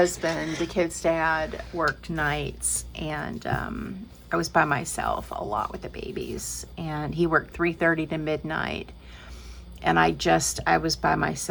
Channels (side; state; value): both; identical; correlation 1.00